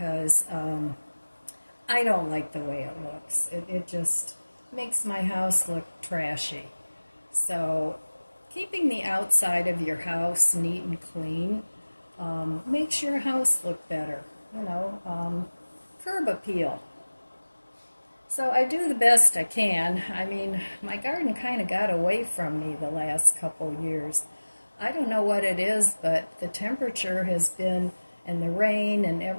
I don't like the way it looks. It just makes my house look trashy. So, keeping the outside of your house neat and clean makes your house look better. Curb appeal. So, I do the best I can. I mean, my garden kind of got away from me the last couple years. I don't know what it is, but the temperature has been, and the rain and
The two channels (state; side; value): inverted; both; correlation -1.00